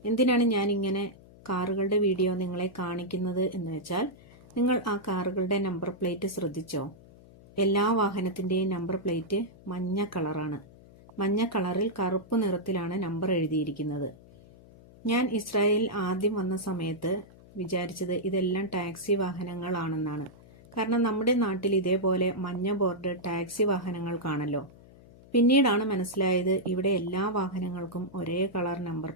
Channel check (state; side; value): noise; left; hum, 23 dB below the sound